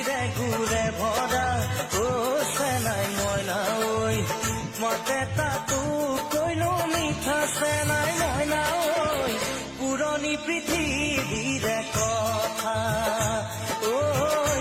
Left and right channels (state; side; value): identical; both; correlation 1.00